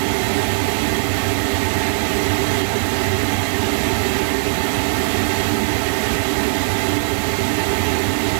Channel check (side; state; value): left; silent; 67 dB below the other